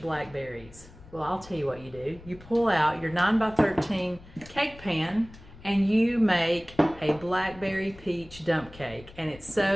Well, I'll tell you what you do. You pull out your 9 by 13 cake pan and you make a blackberry peach dump cake. And it's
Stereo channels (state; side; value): noise; left; rumble, 20 dB below the sound